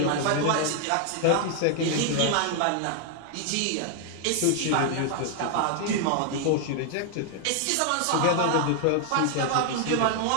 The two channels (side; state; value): both; different; correlation 0.00